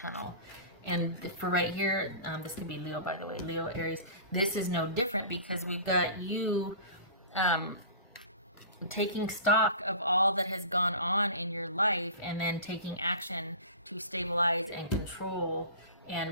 And for right here, this could be Leo, by the way, Leo, Aries, this is no different because we've got you taking stock of all that has gone on in your life and then taking action to stabilize and control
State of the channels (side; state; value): both; inverted; correlation -0.38